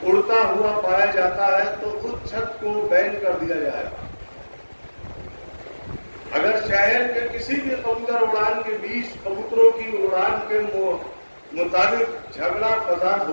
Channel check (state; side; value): inverted; both; correlation -1.00